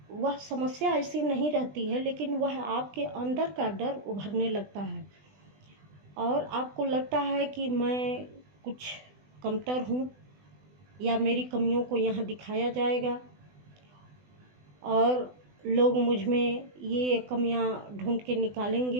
वह समस्या ऐसी नहीं रहती है, लेकिन वह आपके अंदर का डर उभरने लगता है और आपको लगता है कि मैं कुछ कमतर हूँ या मेरी कमियों को यहाँ दिखाया जाएगा और लोग मुझ में ये कमियाँ ढूंढ के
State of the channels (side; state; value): left; late; 20 ms